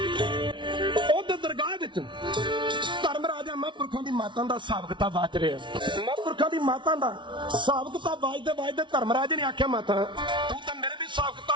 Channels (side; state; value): left; late; 0.24 ms